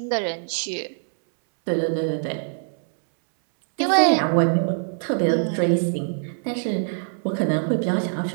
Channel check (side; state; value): left; silent; 63 dB below the other